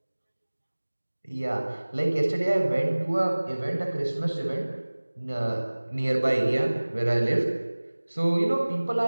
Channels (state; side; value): inverted; both; correlation -1.00